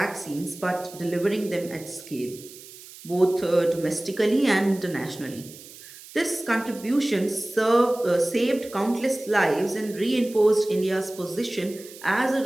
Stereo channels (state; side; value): noise; right; hiss, 18 dB below the sound